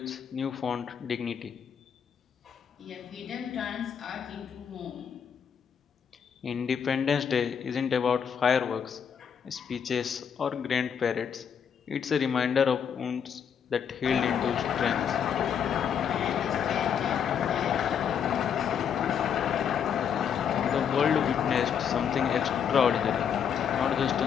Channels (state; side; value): quieter; right; 7.7 dB